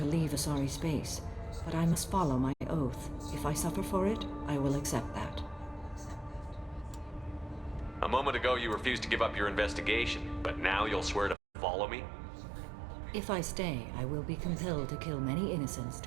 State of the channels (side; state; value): left; drops out; at 11.4 s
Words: leave Asari space, but I must follow my oath. If I suffer for it, I will accept that. A moment ago you refused to give up your investigation, but now you'll swear to follow me? If I stay, I will be compelled to kill many innocents